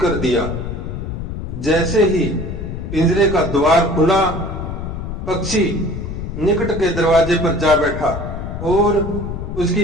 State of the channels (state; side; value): noise; left; rumble, 6 dB below the sound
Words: दिया। जैसे ही पिंजरे का द्वार खुला, पक्षी निकट के दरवाजे पर जा बैठा और